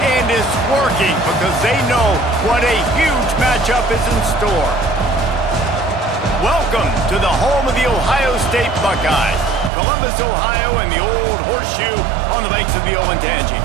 and it's working because they know what a huge matchup is in store. Welcome to the home of the Ohio State Buckeyes, Columbus, Ohio, and the old horseshoe on the banks of the Olentangy.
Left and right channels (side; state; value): left; drops out; at 9.7 s